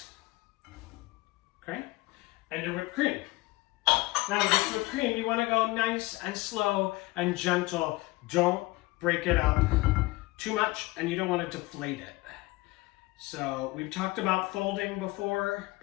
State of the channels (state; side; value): quieter; right; 21.3 dB